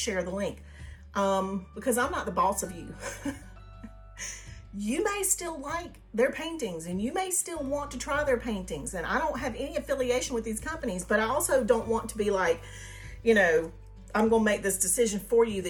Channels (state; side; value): identical; both; correlation 1.00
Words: the link? Because I'm not the boss of you. You may still like their paintings and you may still want to try their paintings. And I don't have any affiliation with these companies, but I also don't want to be like, you know, I'm going to make this decision for you